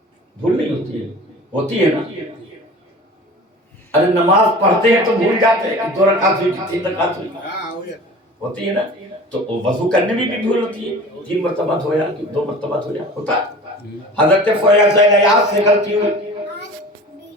بھول نہیں ہوتی ہے؟ ہوتی ہے نا؟ ارے نماز پڑھتے ہیں تو بھول جاتے ہیں 2 رکعت ہوئی کہ 3 رکعت ہوئی، ہوتی ہے نا؟ تو وضو کرنے میں بھی بھول ہوتی ہے، 3 مرتبہ دھویا کہ 2 مرتبہ دھویا، ہوتا ہے۔ حضرت فضیل عیاض سے غلطی ہوئی،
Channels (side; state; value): both; normal; correlation 0.40